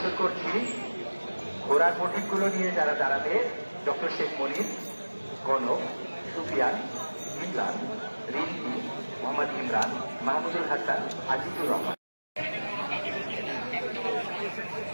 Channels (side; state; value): both; inverted; correlation -1.00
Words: করছি ঘোড়ার প্রতীকগুলো নিয়ে যারা দাঁড়াবে, ডক্টর শেখ মনির, গণক, সুফিয়ান, ইমরান, রিন্টি, মোহাম্মদ ইমরান, মাহমুদুল হাসান, আজিজুর রহমান।